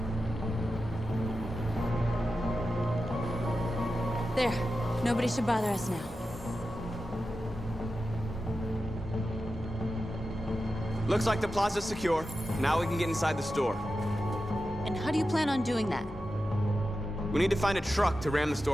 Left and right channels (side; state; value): both; normal; correlation 0.92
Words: There. Nobody should bother us now. Looks like the plaza's secure. Now we can get inside the store. And how do you plan on doing that? We need to find a truck to ram the